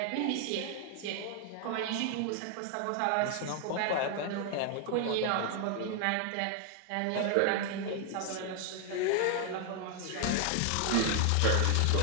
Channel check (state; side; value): different; both; correlation 0.00